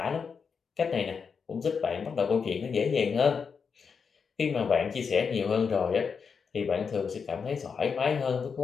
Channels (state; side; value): quieter; right; 5.9 dB